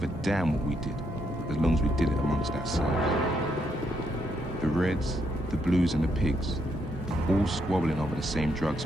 a damn what we did, as long as we did it amongst ourselves. The Reds, the Blues and the Pigs, all squabbling over the same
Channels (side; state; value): both; normal; correlation 0.76